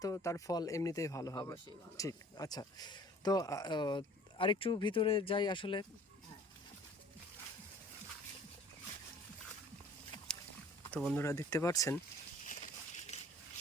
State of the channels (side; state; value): both; normal; correlation 0.50